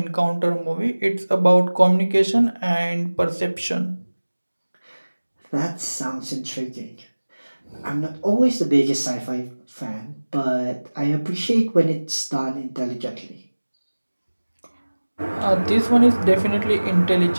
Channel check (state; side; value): inverted; both; correlation -1.00